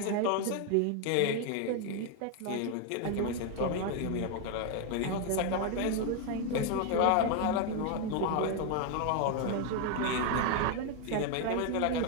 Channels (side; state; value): both; different; correlation 0.01